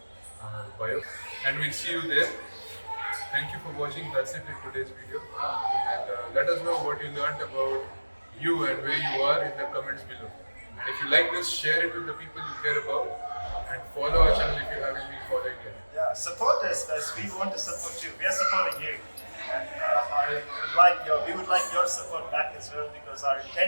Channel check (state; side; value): inverted; both; correlation -1.00